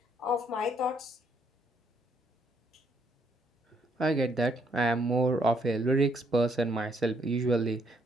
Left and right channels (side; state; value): both; normal; correlation 0.71